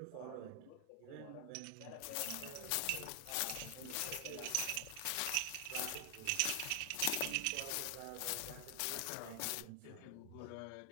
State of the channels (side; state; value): both; different; correlation 0.00